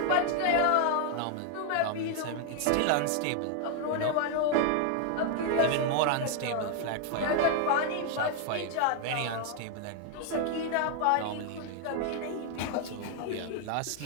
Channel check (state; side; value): different; both; correlation 0.00